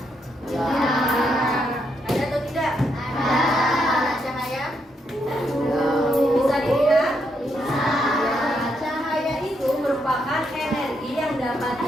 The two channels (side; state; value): both; normal; correlation 0.78